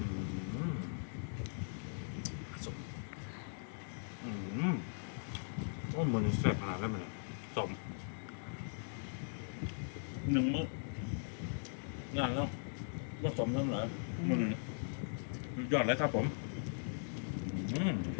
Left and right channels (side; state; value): right; silent; digital silence